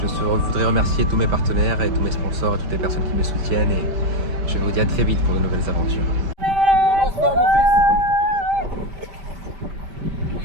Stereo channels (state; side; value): late; left; 5.1 ms